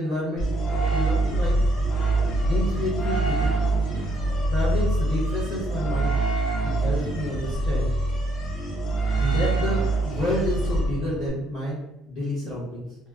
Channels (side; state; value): both; normal; correlation 0.73